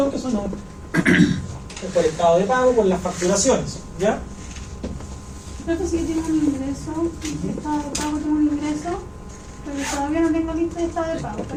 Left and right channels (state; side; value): identical; both; correlation 1.00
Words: que son por estado de pago, por las facturaciones. ¿Ya? creo que sí que tiene un ingreso, estado de pago tiene un ingreso, pero todavía no tengo lista de estado de pago,